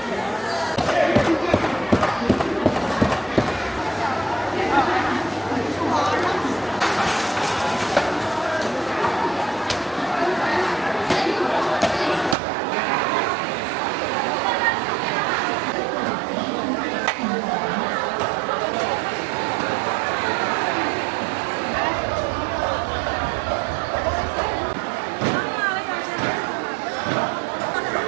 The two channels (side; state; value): left; drops out; at 12.4 s